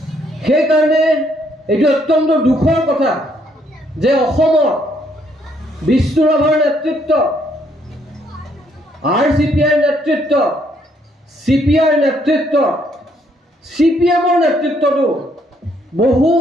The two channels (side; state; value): both; normal; correlation 0.70